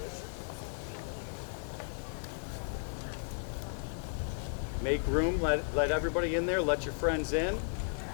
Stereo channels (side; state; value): right; silent; digital silence